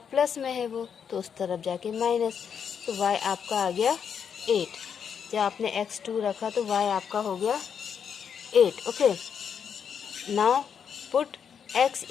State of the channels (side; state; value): right; quieter; 7.4 dB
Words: में है वो, तो उस तरफ जाके माइनस। तो y आपका आ गया 8। जब आपने x 2 रखा तो y आपका हो गया 8। Okay, now put x